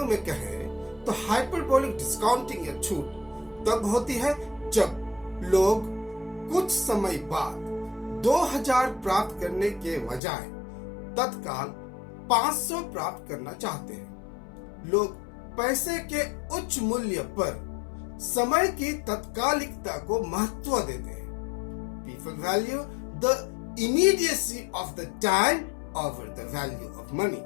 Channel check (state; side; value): drops out; right; at 10.2 s